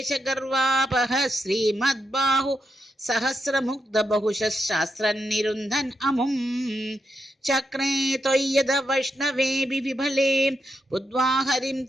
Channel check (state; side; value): normal; both; correlation 0.84